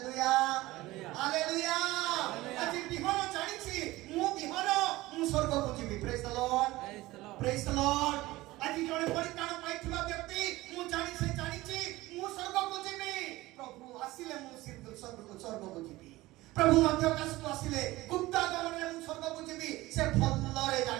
hallelujah. ଆଜି ବିହନ ଜାଣିଛି, ମୁଁ ବିହନ, ମୁଁ ସ୍ୱର୍ଗକୁ ଯିବି। ପ୍ରେଜ୍ ଦ ଲର୍ଡ, ପ୍ରେଜ୍ ଦ ଲର୍ଡ। ଆଜି ଜଣେ ପରିତ୍ରାଣ ପାଇଥିବା ବ୍ୟକ୍ତି ମୁଁ ଜାଣିଛି ମୁଁ ସ୍ୱର୍ଗକୁ ଯିବି। ପ୍ରଭୁ ଆସିଲେ ମୁଁ ସ୍ୱର୍ଗକୁ ଯିବି। ପ୍ରଭୁ ମଧ୍ୟ ଆକାଶକୁ ଆସିଲେ ଗୁପ୍ତାଗମନରେ ମୁଁ ସ୍ୱର୍ଗକୁ ଯିବି, ସେ ଭଲରେ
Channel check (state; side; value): quieter; left; 18.6 dB